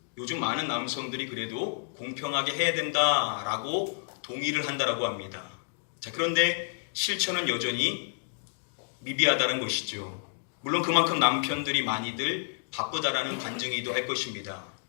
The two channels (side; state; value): right; silent; digital silence